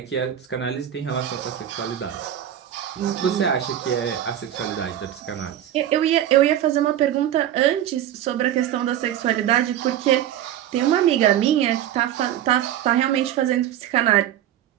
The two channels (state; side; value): quieter; left; 11.3 dB